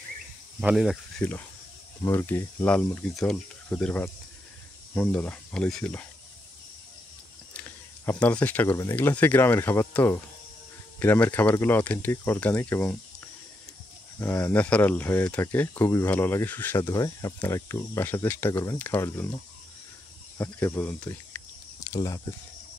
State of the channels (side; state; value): both; normal; correlation 0.82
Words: ভালোই লাগতেছিল। মুরগি, লাল মুরগির ঝোল, খুদের ভাত, মন্দ না, ভালোই ছিল। আপনারা চেষ্টা করবেন, এগুলো হচ্ছে গ্রামের খাবার তো, গ্রামের খাবারগুলো অথেন্টিক, অর্গানিক এবং ন্যাচারাল হয়ে থাকে, খুবই ভালো লাগে, সুস্বাদু হয়। আপনারা একটু বাসা চেষ্টা করবেন খাওয়ার জন্য। আজকে পর্যন্তই, আল্লাহ হাফেজ।